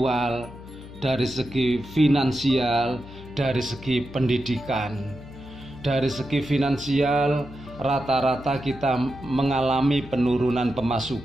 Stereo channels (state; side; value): noise; left; hum, 16 dB below the sound